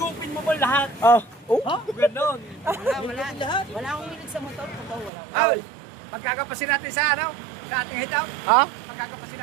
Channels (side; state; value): left; drops out; at 5.1 s